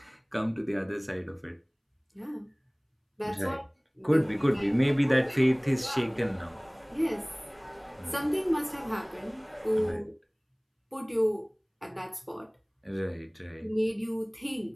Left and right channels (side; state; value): both; identical; correlation 1.00